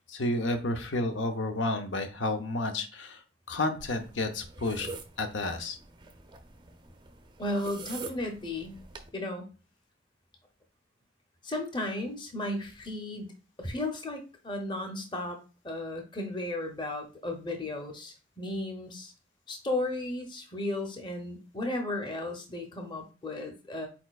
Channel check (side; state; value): both; normal; correlation 0.35